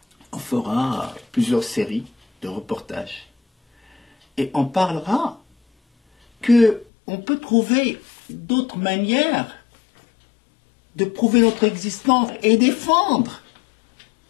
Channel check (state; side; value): drops out; right; at 6.9 s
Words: On fera plusieurs séries de reportages. Et on parlera qu'on peut trouver d'autres manières de prouver notre existence et défendre